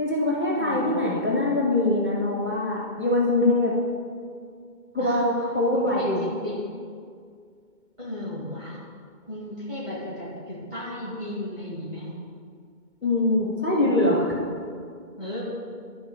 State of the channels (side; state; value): left; late; 2.2 ms